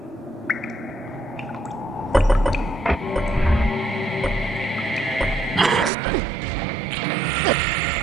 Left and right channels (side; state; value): left; drops out; at 5.9 s